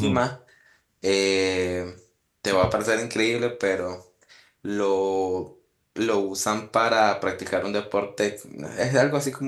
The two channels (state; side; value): identical; both; correlation 1.00